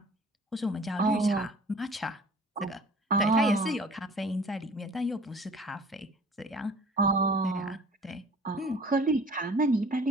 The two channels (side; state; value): both; normal; correlation 0.49